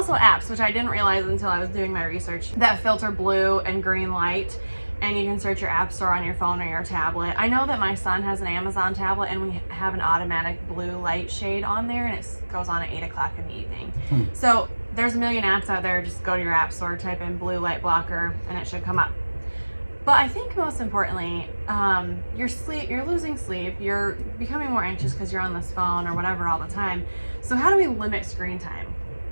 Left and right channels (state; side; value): inverted; both; correlation -1.00